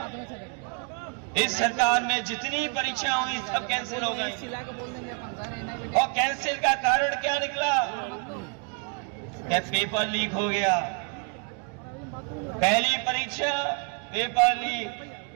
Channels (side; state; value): left; quieter; 36.8 dB